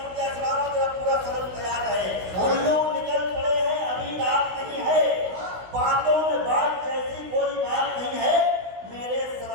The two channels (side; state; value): left; late; 16 ms